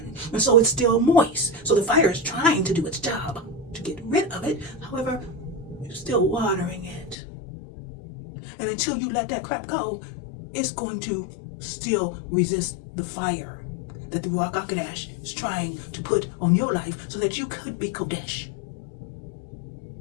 And so it's still moist. So the fire is trying to do its job to get rid of it. However, you're still watering it. And until you let that crap go, it's going to still resist the fire that the Ruakh Ha'Qadash is trying to put on your life so that you could be Kodesh.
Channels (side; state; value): right; drops out; at 7.2 s